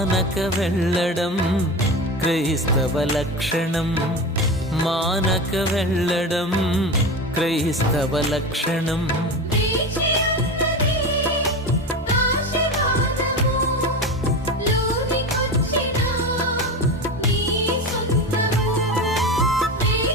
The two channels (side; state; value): both; normal; correlation 0.25